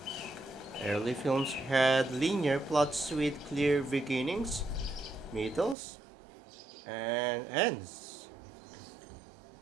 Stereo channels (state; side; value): drops out; left; at 5.8 s